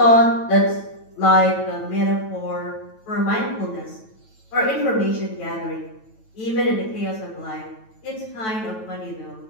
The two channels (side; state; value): right; late; 9.1 ms